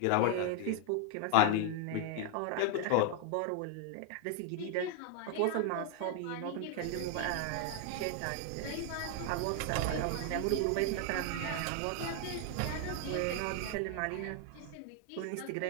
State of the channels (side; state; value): both; different; correlation 0.00